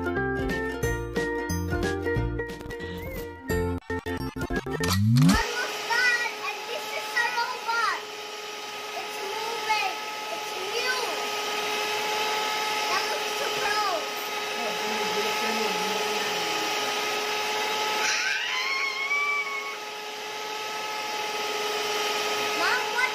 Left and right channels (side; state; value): both; identical; correlation 1.00